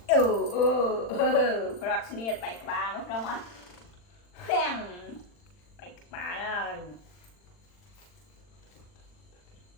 Rọt niệt bạch bà mất đâu mà phèn bạch bà rồi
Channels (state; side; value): late; right; 40 ms